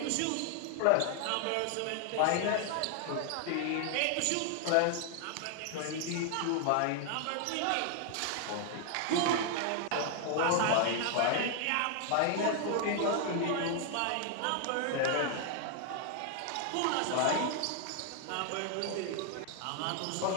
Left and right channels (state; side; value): different; both; correlation 0.00